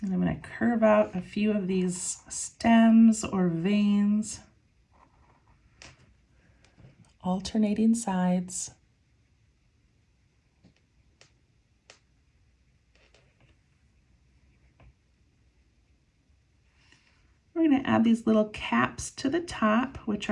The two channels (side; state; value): both; identical; correlation 1.00